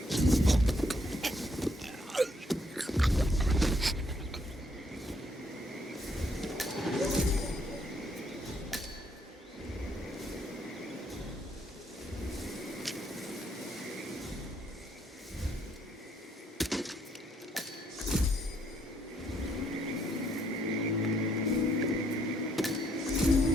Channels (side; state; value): both; normal; correlation 0.71